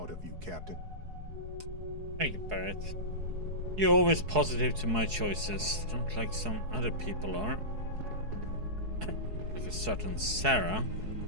of you, Captain. Thank you, Barrett. You're always positive to my choices, not like some other people are. Like a certain Sarah.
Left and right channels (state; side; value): late; left; 4.7 ms